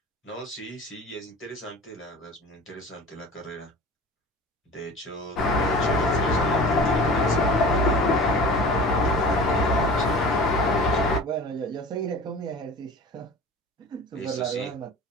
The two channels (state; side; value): normal; both; correlation 0.39